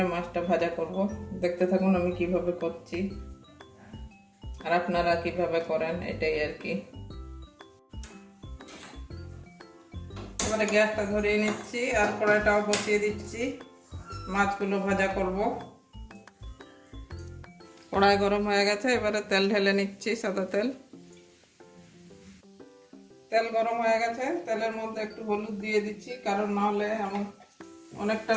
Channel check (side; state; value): both; identical; correlation 1.00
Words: মাছটা ভাজা করব। দেখতে থাকুন আমি কিভাবে করছি, আর আপনারা কিভাবে করেন, এটাই আর কি। এবারে গ্যাসটা ধরিয়ে নিচ্ছি আর কড়াইটাও বসিয়ে দিচ্ছি। মাছগুলো ভাজা করব। কড়াই গরম হয়ে গেছে, এবারে তেল ঢেলে নিচ্ছি, সাদা তেল। তেল গরম হয়ে গেছে, তেলের মধ্যে একটু হলুদ দিয়ে দিচ্ছি, কারণ নাহলে আমার অনেকটা